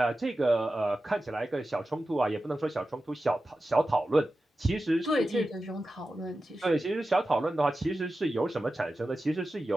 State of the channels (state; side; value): normal; both; correlation 0.93